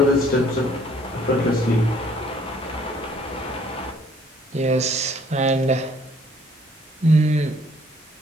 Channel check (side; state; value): both; normal; correlation 0.60